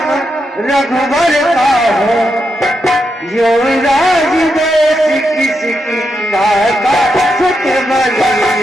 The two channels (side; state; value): both; normal; correlation 0.84